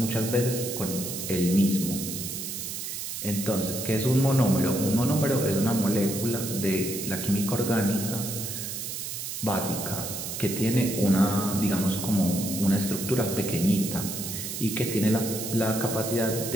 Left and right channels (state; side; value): noise; right; hiss, 6 dB below the sound